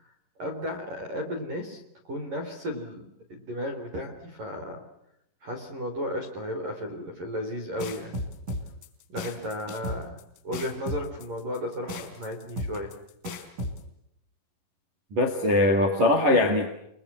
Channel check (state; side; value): late; left; 10 ms